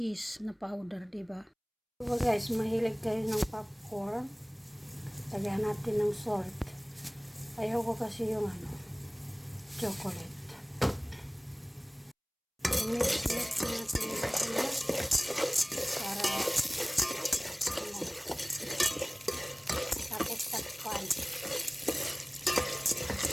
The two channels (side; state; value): both; identical; correlation 1.00